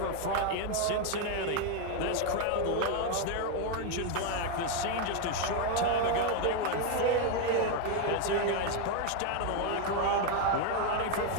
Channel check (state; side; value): different; both; correlation 0.01